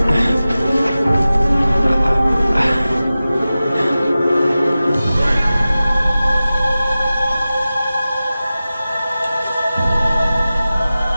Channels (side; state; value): both; inverted; correlation -0.95